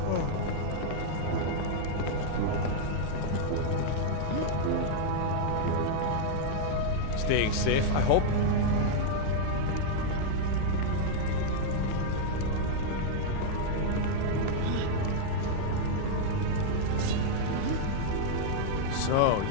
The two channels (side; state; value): both; different; correlation -0.01